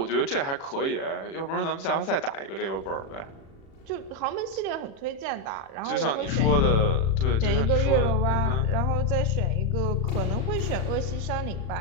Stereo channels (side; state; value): right; late; 36 ms